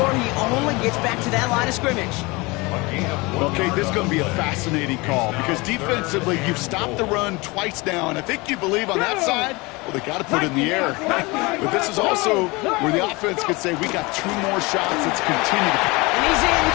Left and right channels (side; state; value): right; quieter; 24.7 dB